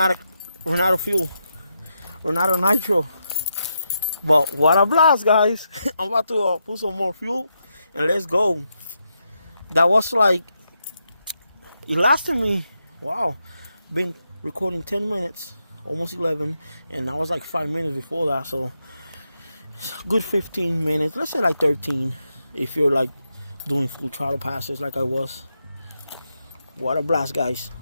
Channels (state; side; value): inverted; both; correlation -0.84